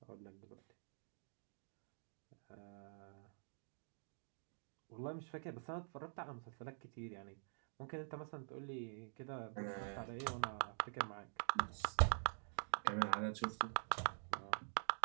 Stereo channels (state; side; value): silent; left; digital silence